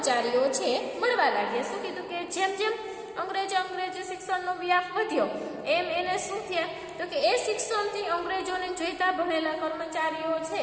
છે મળવા લાગ્યા. શું કીધું કે જેમ જેમ અંગ્રેજી શિક્ષણનો વ્યાપ વધ્યો એમ એને શું થયા તો કે એ શિક્ષણથી અંગ્રેજોને જોઈતા ભણેલા કર્મચારીઓ છે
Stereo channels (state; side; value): identical; both; correlation 1.00